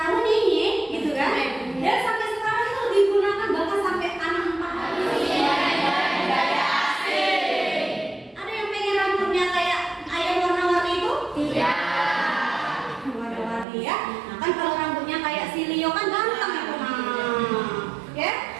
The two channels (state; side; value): drops out; left; at 13.7 s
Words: ini, gitu kan? Dan sampai sekarang itu digunakan bahkan sampai anak 4 hari. Ada yang pengen rambutnya kayak ayam warna-warni itu? Tidak. Warna-warni ya. Nah kan kalau rambutnya kayak si Leo kan ganteng itu. Nah, ya,